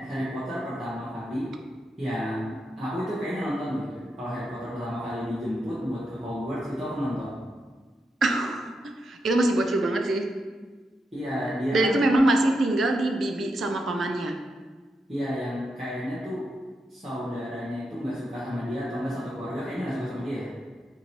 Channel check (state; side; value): normal; both; correlation 0.85